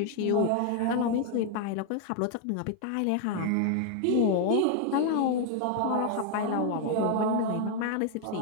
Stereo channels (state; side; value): different; both; correlation 0.00